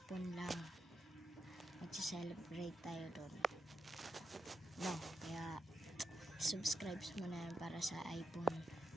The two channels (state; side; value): normal; both; correlation 0.85